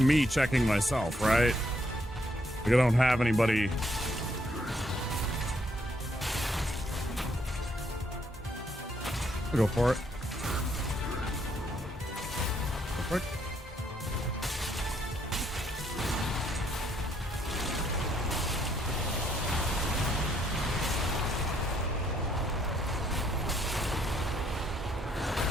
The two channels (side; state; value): both; normal; correlation 0.71